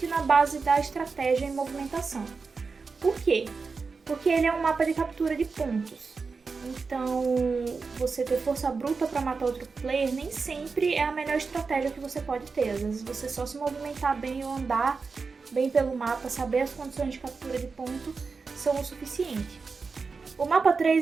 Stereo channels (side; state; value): left; quieter; 4.7 dB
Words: na base da estratégia e movimentação. Por quê? Porque ele é um mapa de captura de pontos. Então, você ter força bruta para matar outro player nem sempre é a melhor estratégia que você pode ter. Às vezes você só se movimentar bem ou andar bem pelo mapa, saber as condições de captura de ponto são o suficiente. O mapa